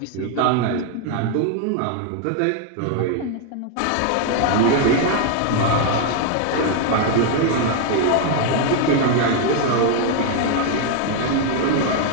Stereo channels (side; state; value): both; different; correlation 0.00